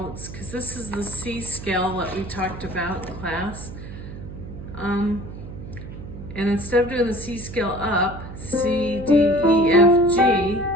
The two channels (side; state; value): right; noise; hum, 11 dB below the sound